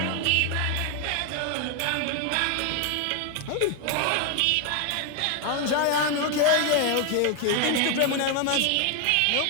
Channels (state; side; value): different; both; correlation 0.01